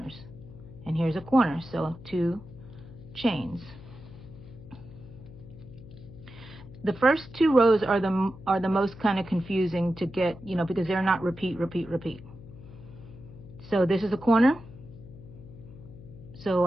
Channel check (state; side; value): noise; left; hum, 17 dB below the sound